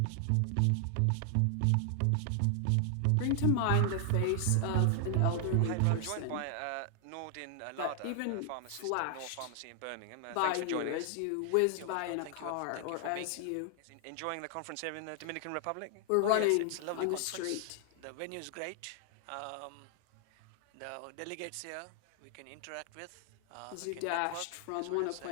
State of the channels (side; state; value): both; different; correlation 0.00